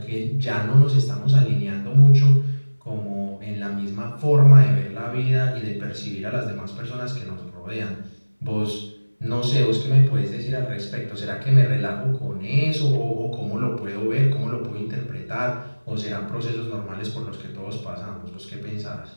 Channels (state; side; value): inverted; both; correlation -1.00